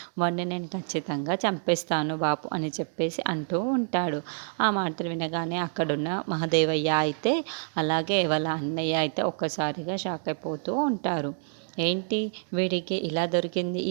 వాడిని నేను ఖచ్చితంగా చంపేస్తాను బాపు అని చెప్పేసి అంటూ ఉంటాడు. ఆ మాటలు వినగానే అక్కడున్న మహాదేవయ్య అయితే అలాగే వాళ్ళ అన్నయ్య అయితే ఒక్కసారిగా షాక్ అయిపోతూ ఉంటారు. ఏంటి వీడికి ఇలా దొరికింది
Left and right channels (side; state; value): left; silent; digital silence